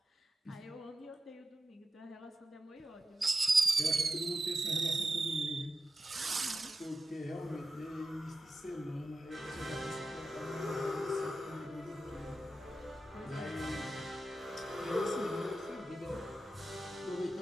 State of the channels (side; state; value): both; normal; correlation 0.91